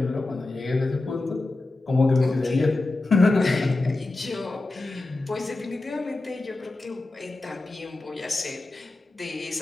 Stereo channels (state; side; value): quieter; right; 3.0 dB